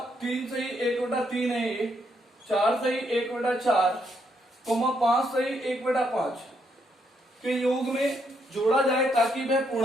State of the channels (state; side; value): normal; both; correlation 0.75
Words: 3 सही 1/3 है ये, 4 सही 1/4, 5 सही 1/5 के योग में जोड़ा जाए ताकि वह